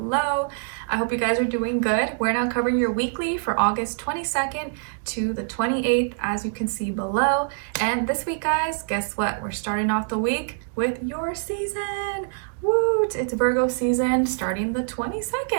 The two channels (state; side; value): silent; left; 62 dB below the other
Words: I hope you guys are doing good. We're now covering your weekly for August 22nd to the 28th, as you can see below. And this week, guys, guess what? We're starting off the week with your season. Woot! It's Virgo season starting the